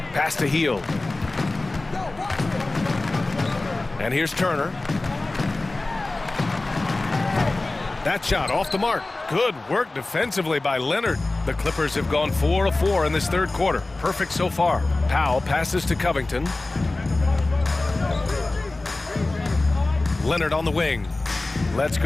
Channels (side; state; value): right; quieter; 3.0 dB